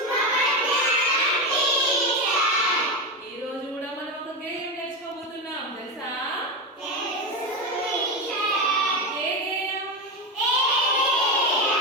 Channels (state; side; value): normal; both; correlation 0.16